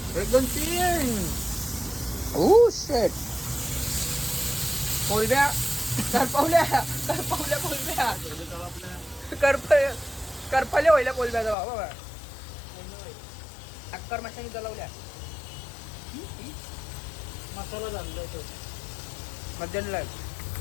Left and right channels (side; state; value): right; drops out; at 11.6 s